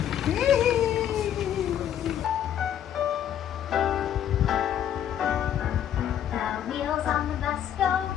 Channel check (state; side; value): quieter; right; 10.1 dB